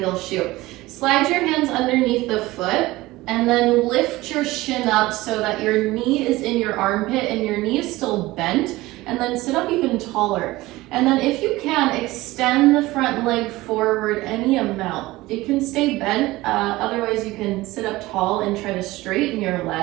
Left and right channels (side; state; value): left; quieter; 18.9 dB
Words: shoe. Slide your hands underneath the foot and then lift your shin up so that your knee is in your armpit and your knee is still bent, and then sit up even taller. And then if you can, extend the front leg forward any amount. It can stay bent, otherwise you can sit up tall and try to straighten your